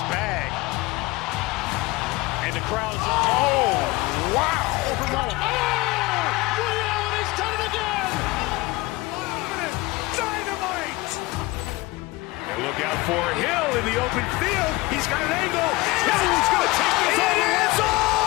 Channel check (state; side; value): quieter; right; 21.5 dB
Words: bag. And the crowd is, oh, wow. Ray Allen has done it again. Dynamite. And look out for Hill in the open field. He's got an angle. Hill's going to take this